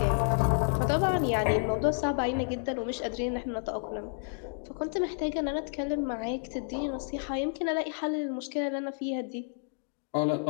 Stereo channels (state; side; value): silent; right; digital silence